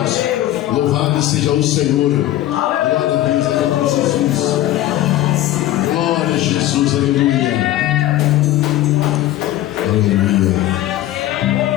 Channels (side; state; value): right; quieter; 14.3 dB